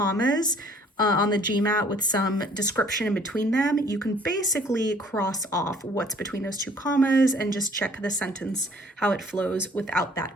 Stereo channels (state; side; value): normal; both; correlation 0.57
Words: on the GMAT with some description in between them, you can basically cross off what's between those two commas and just check the sentence, how it flows without